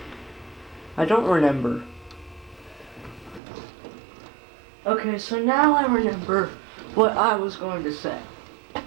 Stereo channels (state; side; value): drops out; left; at 3.4 s